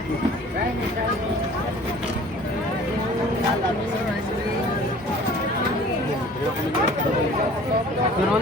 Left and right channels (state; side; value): normal; both; correlation 0.48